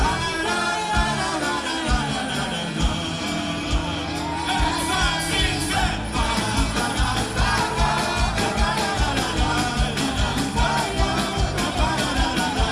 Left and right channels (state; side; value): identical; both; correlation 1.00